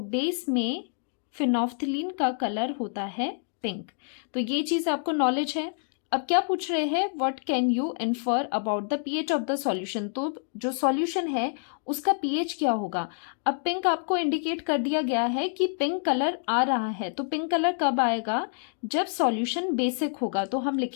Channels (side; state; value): right; silent; 60 dB below the other